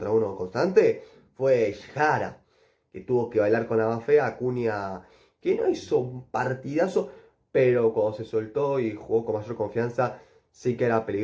1 constante, fue Jara, que tuvo que bailar con la más fea. Acuña, que no hizo un partidazo, pero cuando se soltó y jugó con mayor confianza, sí que era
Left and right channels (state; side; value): identical; both; correlation 1.00